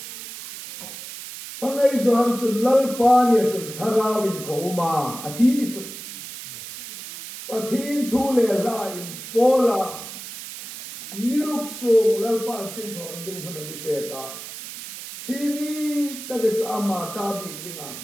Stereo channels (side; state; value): right; noise; hiss, 11 dB below the sound